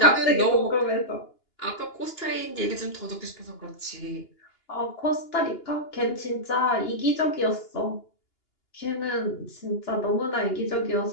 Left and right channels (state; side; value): late; right; 2.8 ms